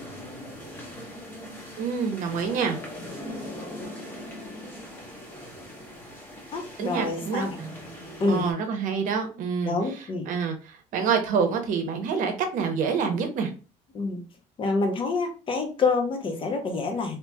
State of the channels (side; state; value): both; normal; correlation 0.43